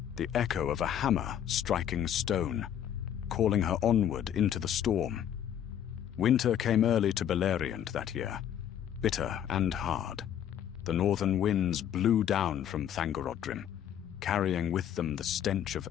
the echo of a hammer striking stone, calling her onward into the storm. Winter came early to Beleriand that year, bitter and hard. The northern winds blew down from Thangorodrim, carrying with them the stench of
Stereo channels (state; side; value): quieter; right; 9.9 dB